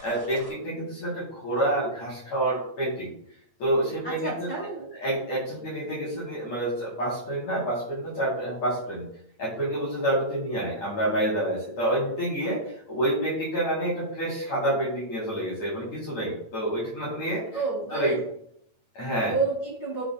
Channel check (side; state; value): right; late; 8.8 ms